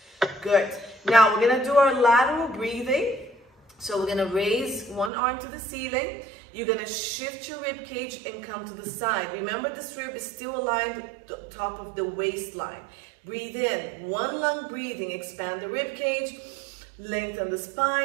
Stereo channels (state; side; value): drops out; left; at 5.1 s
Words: Good. Now we're gonna do our lateral breathing. So we're gonna raise one arm to the ceiling. You're gonna shift your rib cage and come to the side. Remember, this rib is still aligned to the top of the waistline. Breathe in, one lung breathing, expand the rib cage, lengthen the